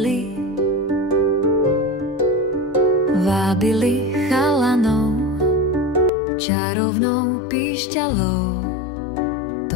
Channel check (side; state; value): right; drops out; at 6.1 s